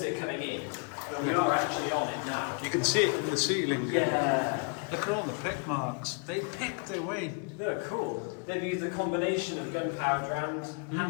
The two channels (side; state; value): right; quieter; 36.6 dB